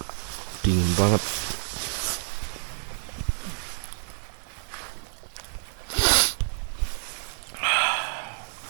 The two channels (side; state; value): left; silent; digital silence